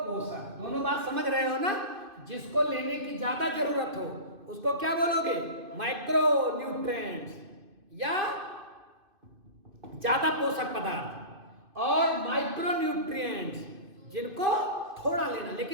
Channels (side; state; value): left; late; 2.5 ms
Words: दोनों बात समझ रहे हो ना? जिसको लेने की ज्यादा जरूरत हो उसको क्या बोलोगे? माइक्रो न्यूट्रिएंट्स या ज्यादा पोषक पदार्थ। और माइक्रो न्यूट्रिएंट्स जिनको थोड़ा लेना,